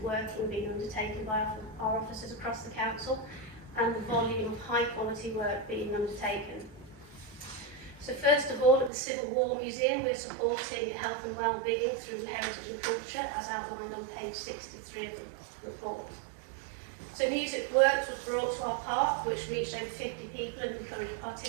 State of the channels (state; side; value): drops out; left; at 8.9 s